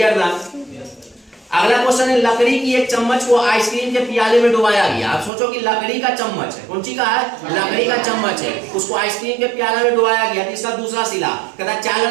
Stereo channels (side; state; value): left; drops out; at 5.3 s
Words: ना? अगला क्वेश्चन है, लकड़ी की एक चम्मच को आइसक्रीम के प्याले में डुबाया गया। आप सोचो कि लकड़ी का चम्मच है, कौन सी का है, लकड़ी का चम्मच है, उसको आइसक्रीम के प्याले में डुबाया गया। इसका दूसरा सिला कहता